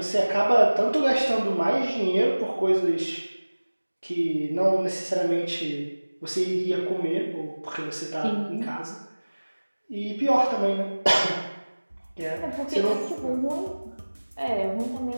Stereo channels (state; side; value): inverted; both; correlation -1.00